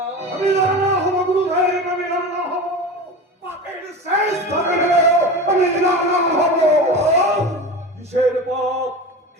আমি রানা হব গুরুদেব, আমি রানা হব। পাপের শেষ ধরে গেলেও আমি রানা হব। কিসের পাপ?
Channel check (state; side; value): normal; both; correlation 0.29